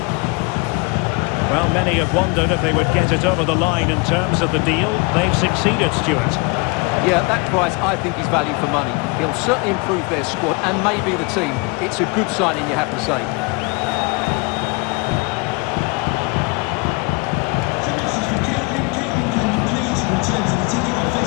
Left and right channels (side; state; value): right; quieter; 27.8 dB